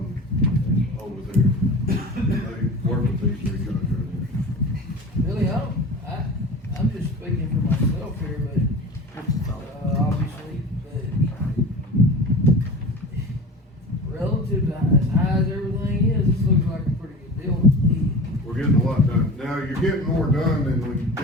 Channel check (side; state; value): both; normal; correlation 0.35